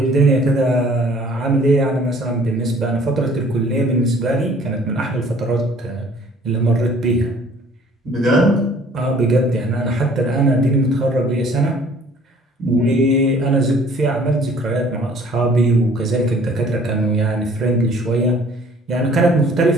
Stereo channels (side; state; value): both; normal; correlation 0.55